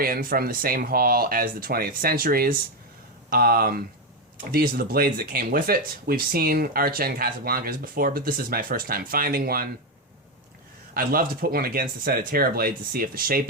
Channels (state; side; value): normal; both; correlation 0.08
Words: from the same hall as the 20th Centuries. These are the blades that came with it. We've seen Arch-End Casablancas before, but this is my first time finding one. I'd love to put one against a set of Terra blades to see if the shape